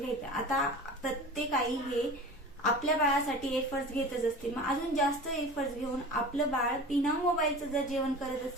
आता प्रत्येक आई हे आपल्या बाळासाठी एफर्ट्स घेतच असते, मग अजून जास्त एफर्ट्स घेऊन आपलं बाळ बिना मोबाईलचं जर जेवण करत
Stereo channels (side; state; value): both; normal; correlation 0.36